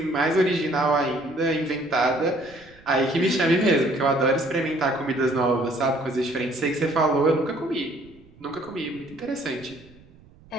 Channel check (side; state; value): right; noise; rumble, 25 dB below the sound